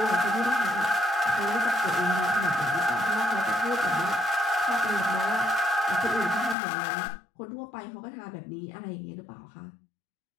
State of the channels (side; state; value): right; drops out; at 6.6 s